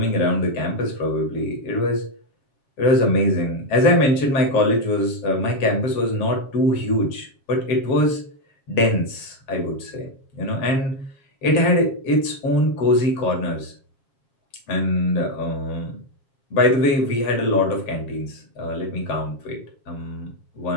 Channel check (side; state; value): right; late; 7.4 ms